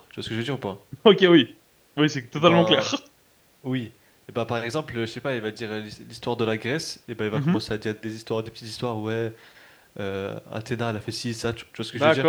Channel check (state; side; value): identical; both; correlation 1.00